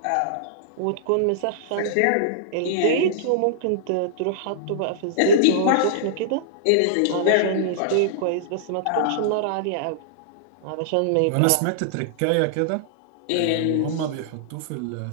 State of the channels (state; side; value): different; both; correlation -0.02